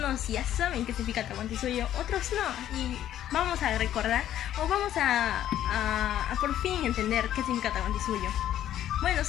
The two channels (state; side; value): quieter; right; 11.7 dB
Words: ya saben qué significa Tahuantinsuyo, otros no. Y vamos a recordar, o vamos a por fin entender qué significa Tahuantinsuyo. Bueno,